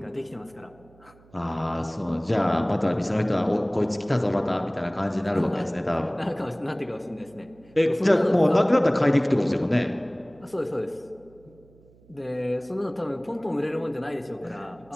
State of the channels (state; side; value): noise; right; hum, 27 dB below the sound